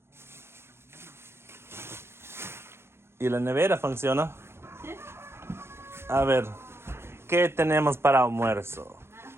¿Y la nevera funciona? A ver, ¿qué tenemos para almuerzo?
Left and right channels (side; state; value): left; late; 0.12 ms